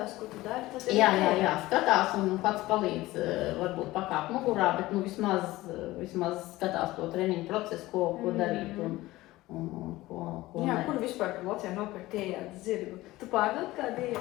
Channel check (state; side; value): quieter; right; 18.1 dB